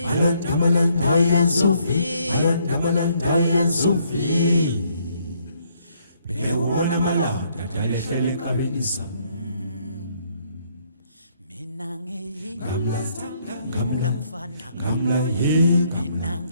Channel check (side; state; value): both; inverted; correlation -0.69